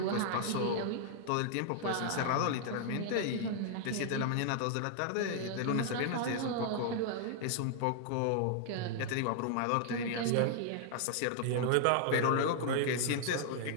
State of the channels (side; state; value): both; different; correlation -0.01